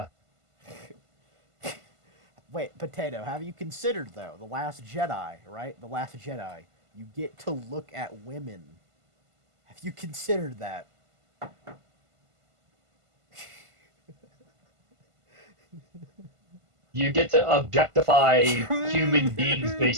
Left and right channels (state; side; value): late; left; 1.5 ms